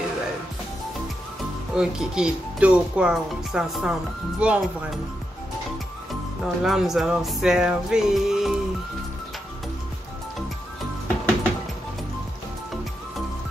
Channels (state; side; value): normal; both; correlation 0.85